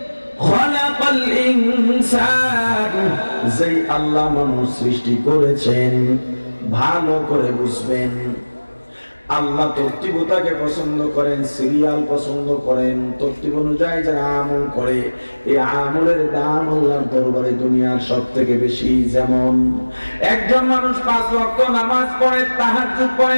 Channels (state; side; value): inverted; both; correlation -1.00